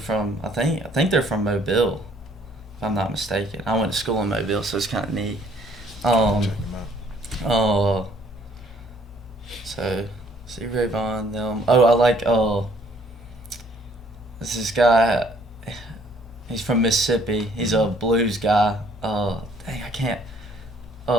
I think they're from Mobile, if I'm not mistaken. I went to school in Mobile, so it's kind of neat. So Stevie Ray Vaughan, them. Oh, I like this guy. He's from Mississippi. He's a blues guy. Dang, I can't.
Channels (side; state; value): both; normal; correlation 0.62